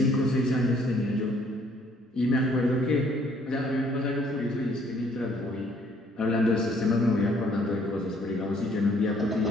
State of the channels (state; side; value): normal; both; correlation 0.63